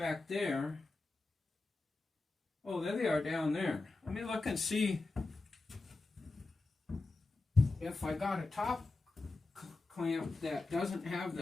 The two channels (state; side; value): quieter; right; 3.4 dB